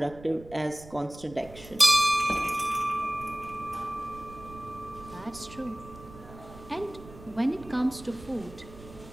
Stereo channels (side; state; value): right; noise; rumble, 17 dB below the sound